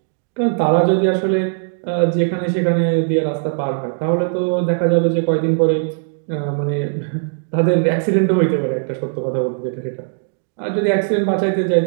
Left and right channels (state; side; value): silent; left; digital silence